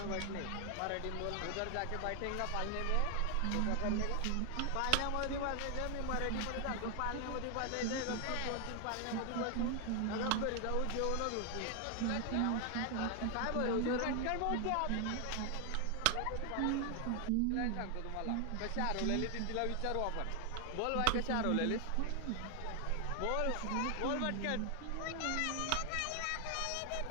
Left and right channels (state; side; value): different; both; correlation 0.00